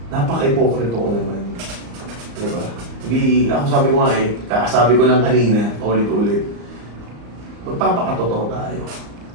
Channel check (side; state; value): left; late; 34 ms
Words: napaka-hypocrite ko naman. Diba? Hindi, ako sabi ko nga kakasabi ko lang kanina, ulit-ulit, magpapakatotoo tayo.